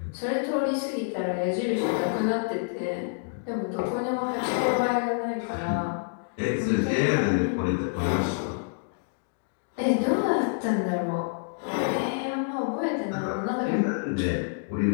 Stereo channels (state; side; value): silent; right; digital silence